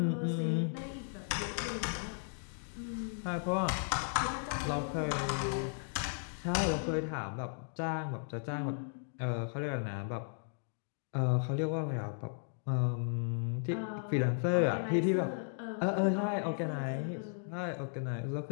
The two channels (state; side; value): silent; right; digital silence